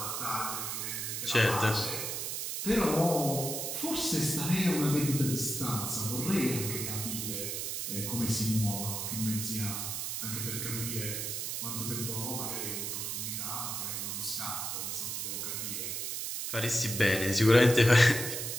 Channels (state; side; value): noise; right; hiss, 3 dB below the sound